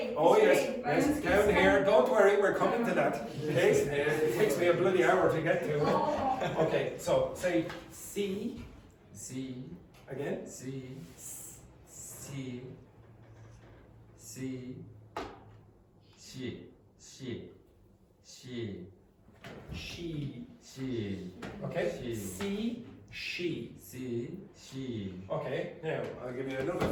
Oh yes, spray, but yes, it's down fine. here. Don't worry, we're coming to that. Okay, it takes me a bloody hour to get to. Oh, Okay, so say C C, again. C, C, C, she, she, she, She. she, Okay. She. C. She. C, she. Okay. Now I'll give you another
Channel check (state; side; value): identical; both; correlation 1.00